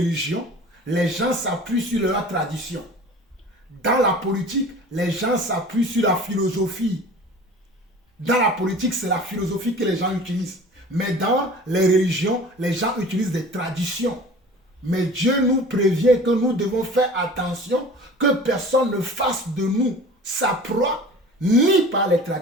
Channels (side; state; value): both; normal; correlation 0.42